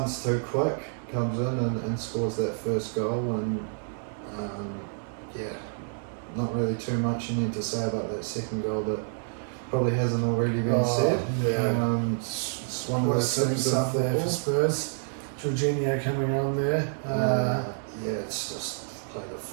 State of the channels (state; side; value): silent; left; digital silence